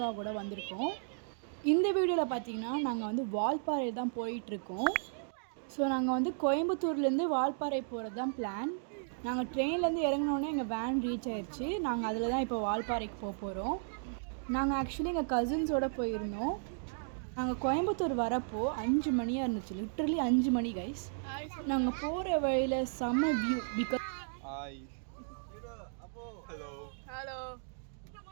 வந்திருக்கோம். இந்த வீடியோவில் பார்த்தீங்கன்னா நாங்கள் வந்து வால்பாறை தான் போயிட்டுருக்கோம். ஸோ நாங்கள் வந்து கோயம்புத்தூர்லேருந்து வால்பாறை போகிறது தான் பிளான். நாங்கள் ட்ரெயின்லேருந்து இறங்கினோன்னே எங்கள் வேன் ரீச் ஆயிடுச்சு. நாங்கள் அதில் தான் இப்போ வால்பாறைக்கு போக போகிறோம். நாங்கள் ஆக்சுவலி எங்கள் கசின்ஸோடு போயிருந்தோம். நாங்கள் கோயம்புத்தூர் வரப்போ 5 மணியாக இருந்துச்சு. லிட்ரலி 5 மணி கைஸ். நாங்கள் போகிற வழியில் செம்ம வியூ. பிகாஸ்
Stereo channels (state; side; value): silent; left; digital silence